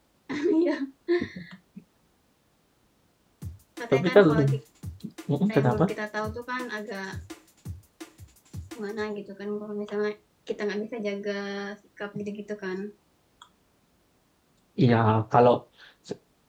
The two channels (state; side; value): identical; both; correlation 1.00